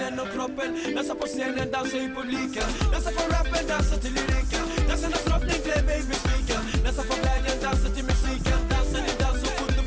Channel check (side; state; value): both; identical; correlation 1.00